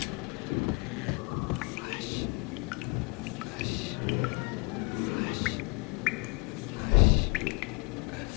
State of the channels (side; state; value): right; quieter; 31.2 dB